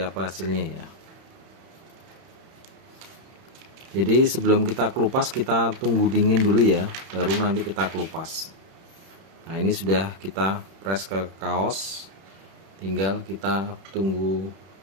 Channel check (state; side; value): late; left; 31 ms